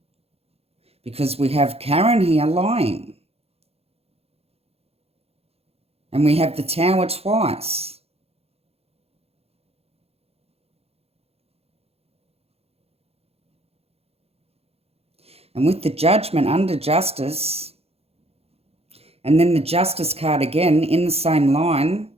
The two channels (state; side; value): late; left; 0.29 ms